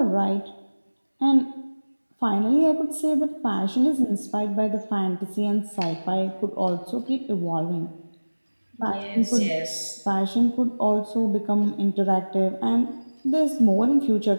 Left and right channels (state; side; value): inverted; both; correlation -1.00